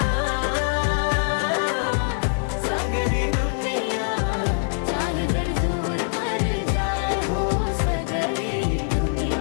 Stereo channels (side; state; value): right; silent; 61 dB below the other